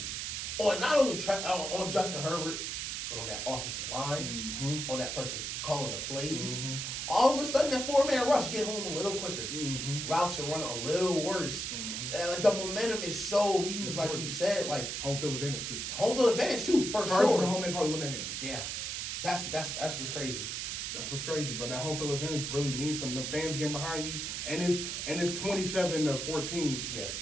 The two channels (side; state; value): right; noise; hiss, 3 dB below the sound